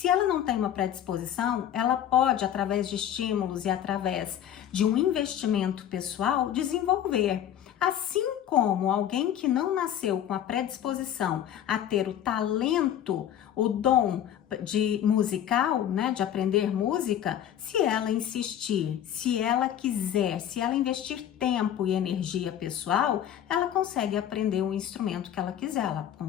ela não tem uma predisposição, ela pode, através de estímulos e através de um investimento pessoal, desenvolver. Assim como alguém que não nasceu com a predisposição a ter o talento, o dom de musical, né, de aprender música, se ela insistir, se ela quiser, se ela investir tempo e energia pessoal, ela consegue aprender o instrumento que ela quiser, ela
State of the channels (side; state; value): right; quieter; 10.4 dB